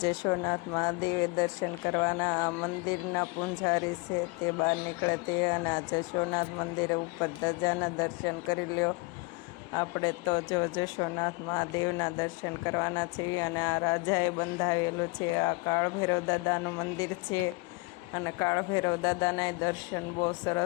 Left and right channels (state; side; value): quieter; right; 26.7 dB